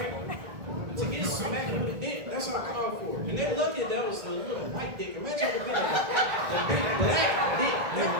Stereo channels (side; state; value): left; late; 1.8 ms